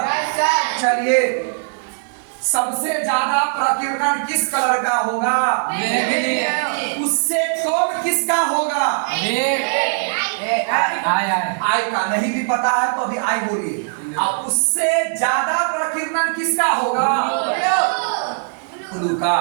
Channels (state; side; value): silent; left; digital silence